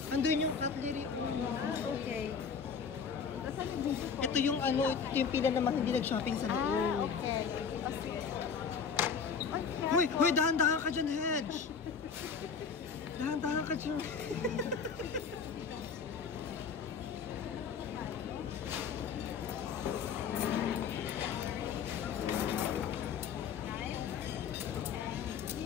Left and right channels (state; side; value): quieter; right; 6.2 dB